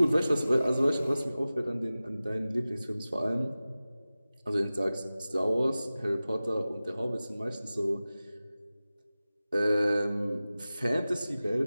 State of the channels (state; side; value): inverted; both; correlation -0.96